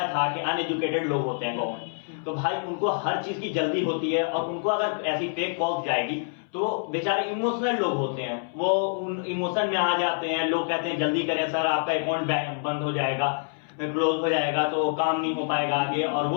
था कि अनएजुकेटेड लोग होते हैं गांव में, तो भाई उनको हर चीज की जल्दी होती है, और उनको अगर ऐसी फेक कॉल्स जाएगी तो बेचारे इमोशनल लोग होते हैं, वो उन इमोशन में आ जाते हैं। लोग कहते हैं जल्दी करें सर, आपका अकाउंट बंद हो जाएगा, क्लोज हो जाएगा, तो काम नहीं हो पाएगा आगे। और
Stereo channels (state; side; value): silent; right; 60 dB below the other